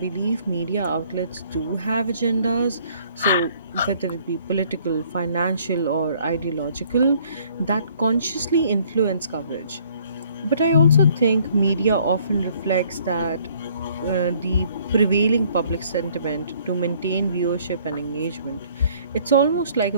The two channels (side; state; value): both; inverted; correlation -0.61